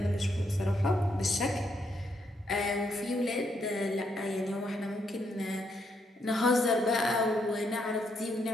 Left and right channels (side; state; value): both; normal; correlation 0.76